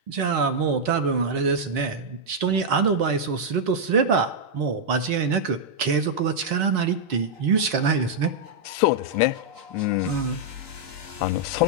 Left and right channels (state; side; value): late; left; 4.3 ms